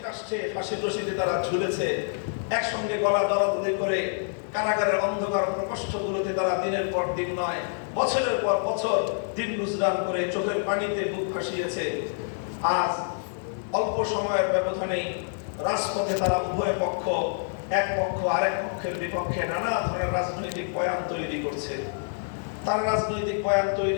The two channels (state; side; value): silent; right; 57 dB below the other